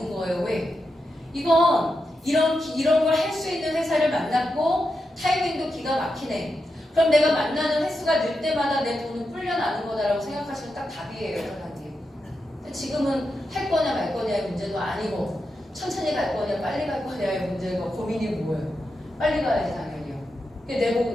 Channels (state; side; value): normal; both; correlation 0.87